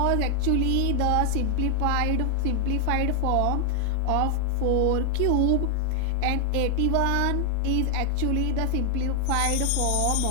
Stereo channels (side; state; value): both; different; correlation 0.00